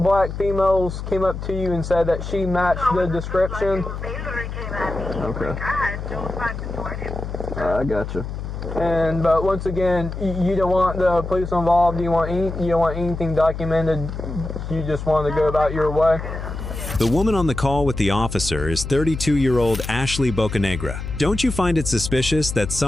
females came up to you and said that she matched the description. They literally came at me. Okay. Like, I had no time to do anything. I gotcha. But once again, you don't want the police involved. You don't want anything documented. You just want to go about your way. The woman on the call with the officer is 32-year-old Ashley Bocanegra. Don't you find it suspicious that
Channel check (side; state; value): left; noise; hum, 7 dB below the sound